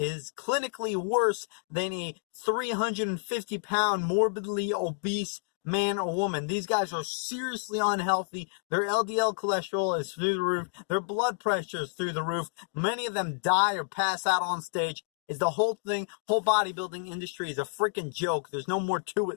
clinically worse than a 350-pound morbidly obese man or woman. These guys are seriously unhealthy. Their LDL cholesterol is through the roof. Their blood pressure is through the roof. Many of them die or pass out on stage. Is the whole bodybuilding industry is a freaking joke. There's no more to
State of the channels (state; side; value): silent; right; digital silence